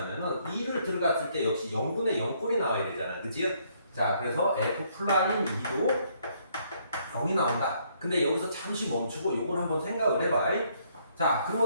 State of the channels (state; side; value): inverted; both; correlation -0.69